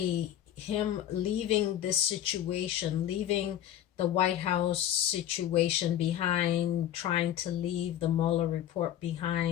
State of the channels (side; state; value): right; quieter; 11.4 dB